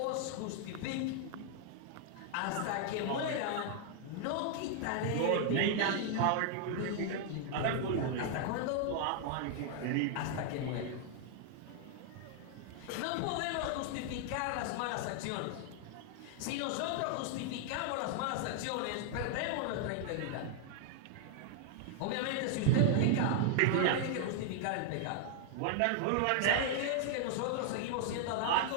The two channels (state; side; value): different; both; correlation 0.00